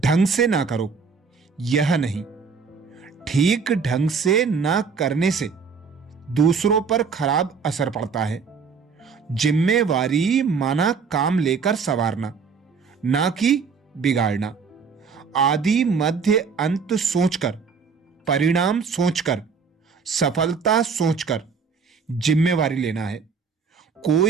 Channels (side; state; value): left; quieter; 5.5 dB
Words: से ना करो, यह नहीं। ठीक ढंग से ना करने से दूसरों पर खराब असर पड़ता है। जिम्मेवारी माना काम लेकर संवारना, ना कि बिगाड़ना। आदि मध्य अंत सोचकर, परिणाम सोचकर, सफलता सोचकर जिम्मेवारी लेना है।